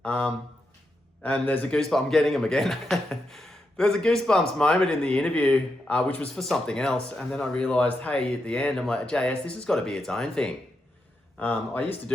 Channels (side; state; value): both; normal; correlation 0.85